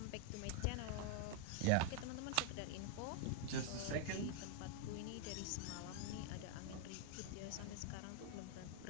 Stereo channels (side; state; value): both; different; correlation 0.00